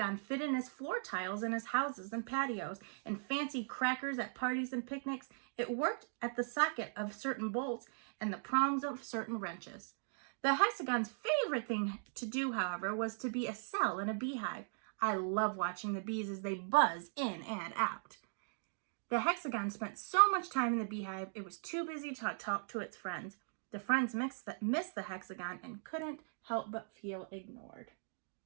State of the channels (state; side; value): silent; left; digital silence